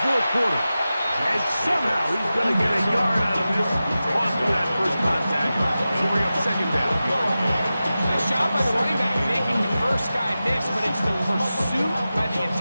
4th quarter. And somehow he's going to get a yard out of this after that first contact. It'll bring up second down. Nice job by the running back making the first guy miss, but it's the pursuit by the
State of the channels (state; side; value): inverted; both; correlation -0.94